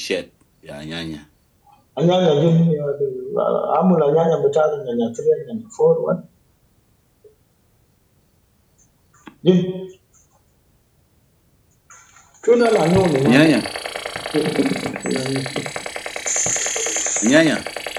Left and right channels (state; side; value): identical; both; correlation 1.00